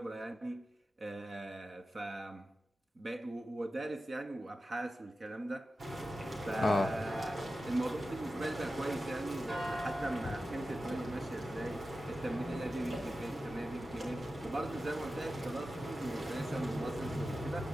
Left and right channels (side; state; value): both; normal; correlation 0.93